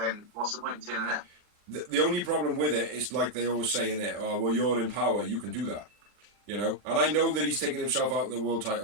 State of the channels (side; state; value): left; late; 39 ms